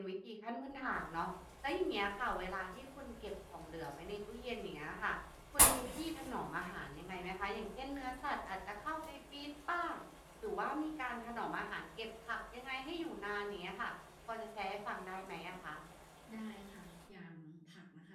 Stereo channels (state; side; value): identical; both; correlation 1.00